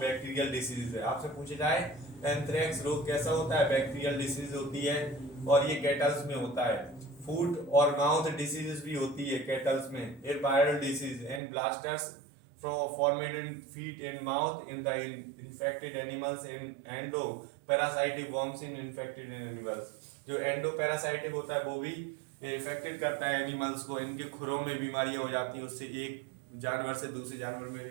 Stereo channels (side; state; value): left; drops out; at 11.4 s